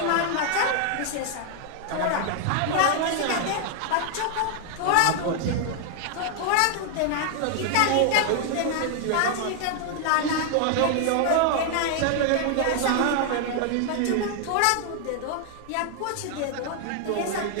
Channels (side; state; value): both; different; correlation 0.00